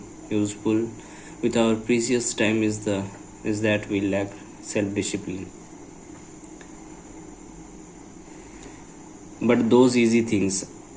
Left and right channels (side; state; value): both; identical; correlation 1.00